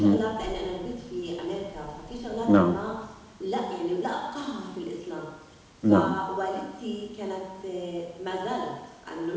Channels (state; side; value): identical; both; correlation 1.00